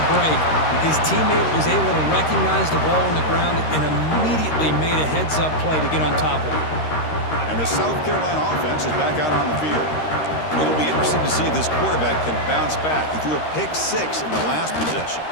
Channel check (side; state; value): right; late; 13 ms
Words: break. His teammate was able to recognize the ball on the ground and immediately made a heads-up play to get on top of it. And the South Carolina offense is back out on the field. It'll be interesting to see if this quarterback can bounce back. He threw a pick six in the last possession.